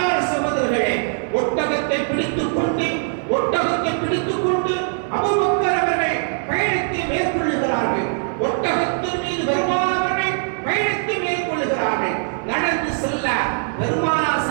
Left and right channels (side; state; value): left; silent; 59 dB below the other